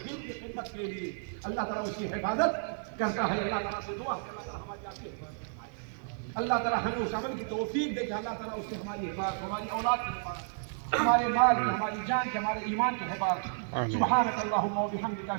دین کی خدمت کے لیے، اللہ تعالیٰ اس کی حفاظت کرتا ہے۔ اللہ تعالیٰ سے دعا ہے اللہ تعالیٰ ہماری آپ کی حفاظت فرمائے، اللہ تعالیٰ ہمیں اس عمل کی توفیق دے کہ اللہ تعالیٰ اس سے ہماری حفاظت، ہماری اولاد کی حفاظت، ہمارے مال کی، ہماری جان کی، ہمارے ایمان کی حفاظت۔ سبحانک اللہم و بحمدک،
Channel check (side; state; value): left; silent; digital silence